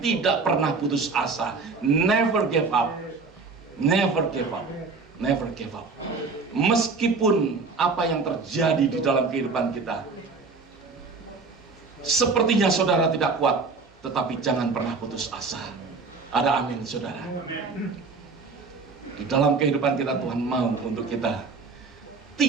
pernah putus asa. Never give up. Never give up. Never give up. Meskipun apa yang terjadi di dalam kehidupan kita, sepertinya saudara tidak kuat, tetapi jangan pernah putus asa. Ada amin, saudara. Di dalam kehidupan kita Tuhan mau untuk kita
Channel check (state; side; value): quieter; left; 4.3 dB